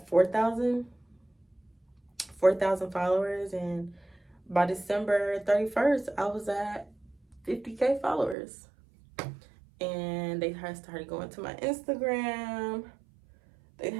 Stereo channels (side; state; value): left; drops out; at 8.3 s